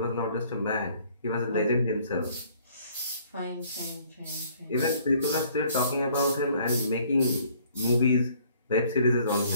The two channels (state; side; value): inverted; both; correlation -0.60